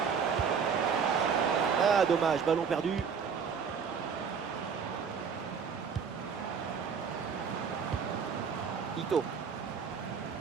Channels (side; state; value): left; quieter; 6.4 dB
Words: Ah, dommage, ballon perdu. Ito.